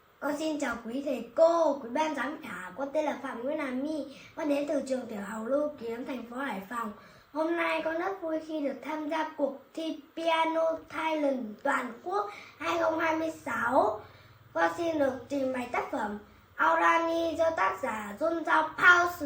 Con xin chào quý thầy cô, quý ban giám khảo. Con tên là Phạm Nguyễn Hà My. Con đến từ trường tiểu học Lưu Kiếm, thành phố Hải Phòng. Hôm nay con rất vui khi được tham gia cuộc thi Piano Talent toàn quốc 2026. Con xin được trình bày tác phẩm Aurani do tác giả John Zhao Pao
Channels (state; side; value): identical; both; correlation 1.00